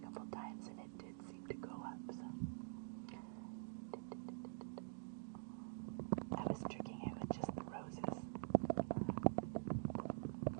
couple times and it did seem to go up, so. I was tricking it with just the roses.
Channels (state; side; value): silent; left; digital silence